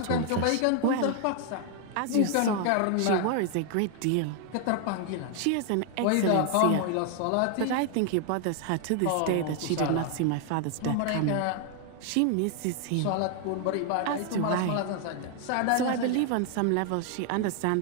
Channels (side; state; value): both; different; correlation 0.00